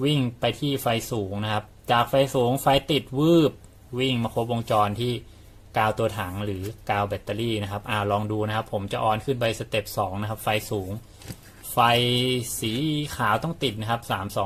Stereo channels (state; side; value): identical; both; correlation 1.00